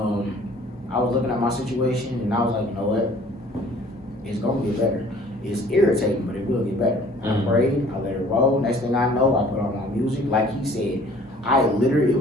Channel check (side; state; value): both; normal; correlation 0.53